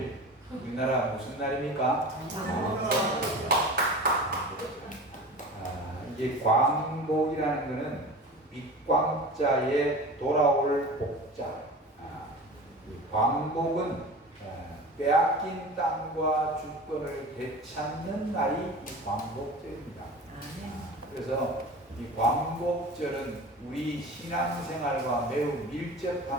우리나라 무슨 날입니까? 이게 광복이라는 것은 밑광자에 돌아올 복자. 광복은 빼앗긴 땅과 주권을 되찾는 날이 이 광복절입니다. 그래서 이 광복절은 우리 신앙생활과 매우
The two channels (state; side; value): normal; both; correlation 0.35